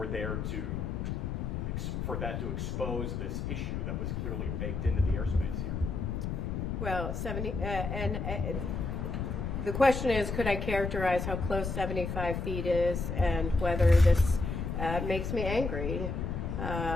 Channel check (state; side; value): noise; left; rumble, 3 dB below the sound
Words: that to expose this issue that was clearly baked into the airspace here? Well, the question is, could I characterize how close 75 feet is and whether this makes me angry?